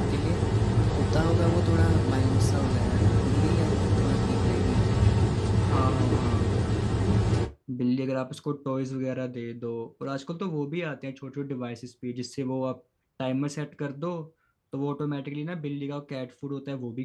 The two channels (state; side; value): identical; both; correlation 1.00